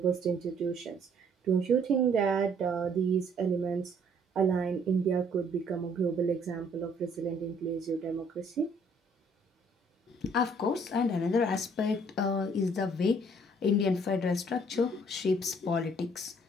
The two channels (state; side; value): normal; both; correlation 0.62